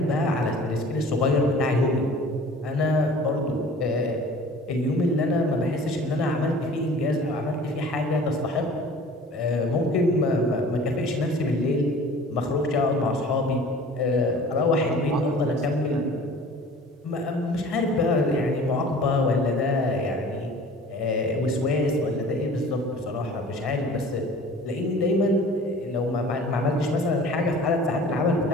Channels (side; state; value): both; normal; correlation 0.45